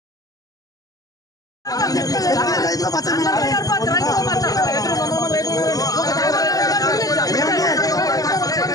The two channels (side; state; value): right; late; 0.17 ms